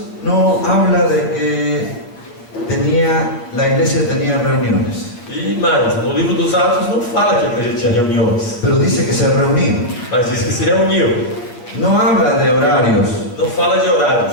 no habla de que la iglesia tenía reuniones, E mais, no livro dos Atos não fala que a igreja tinha reuniões, pero dice que se reunían. mas diz que se reuniu. No habla de horarios, Não fala de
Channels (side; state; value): right; late; 8.2 ms